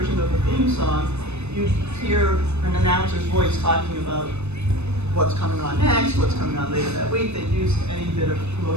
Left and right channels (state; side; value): late; left; 0.81 ms